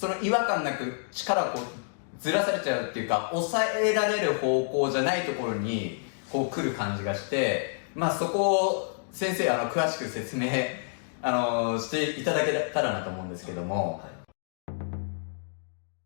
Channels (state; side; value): silent; right; digital silence